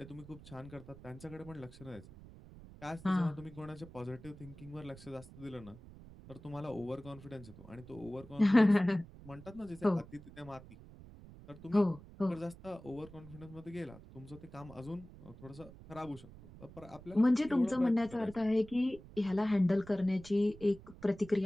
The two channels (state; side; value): noise; right; rumble, 18 dB below the sound